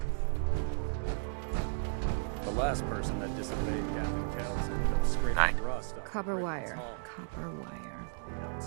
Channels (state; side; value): silent; left; digital silence